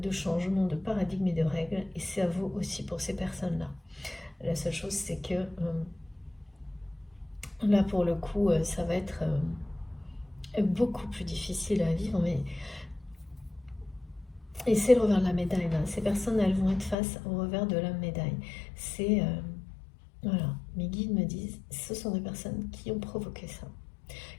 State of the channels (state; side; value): drops out; right; at 16.9 s